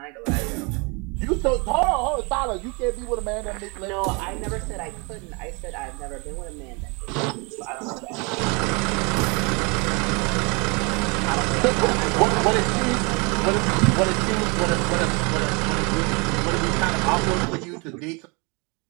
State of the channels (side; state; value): left; quieter; 30.3 dB